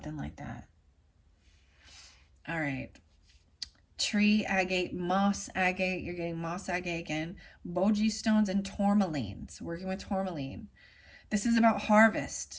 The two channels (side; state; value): both; identical; correlation 1.00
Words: like that? All right. Tree agate, moss agate. You're getting moss agate again. Boji stones and tourmaline. So working with tourmaline. This is about